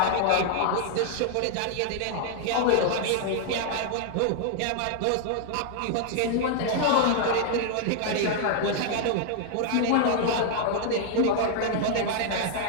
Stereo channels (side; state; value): both; different; correlation 0.00